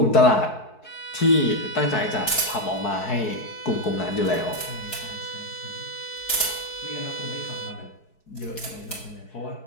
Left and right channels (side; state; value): right; late; 4.6 ms